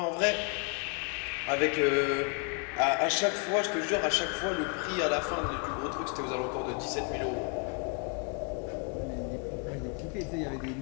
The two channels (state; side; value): quieter; right; 37.2 dB